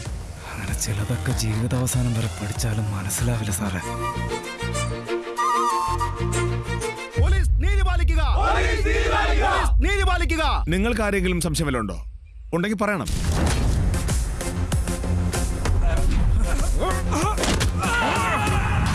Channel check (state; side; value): identical; both; correlation 1.00